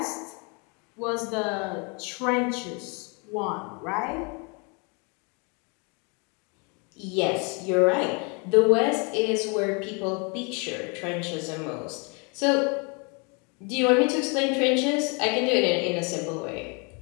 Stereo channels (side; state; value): right; quieter; 33.0 dB